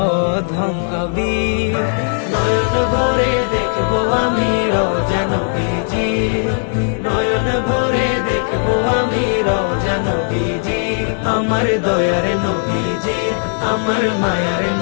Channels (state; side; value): silent; right; digital silence